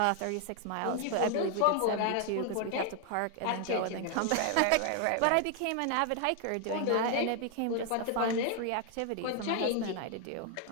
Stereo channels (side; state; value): both; different; correlation 0.00